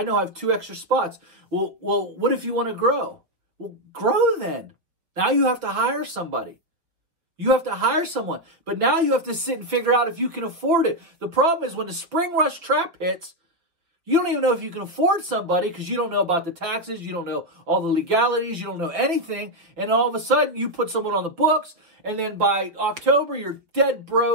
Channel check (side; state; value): left; late; 5.7 ms